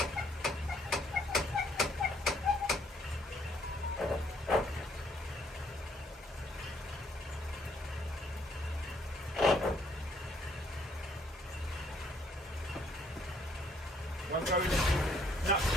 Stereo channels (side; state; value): both; normal; correlation 0.67